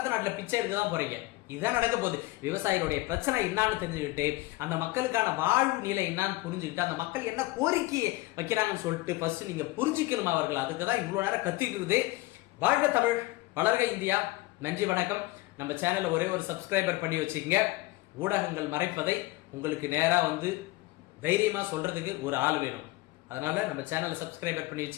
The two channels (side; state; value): right; quieter; 20.3 dB